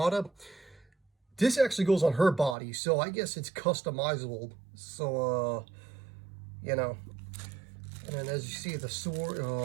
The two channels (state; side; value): drops out; left; at 2.6 s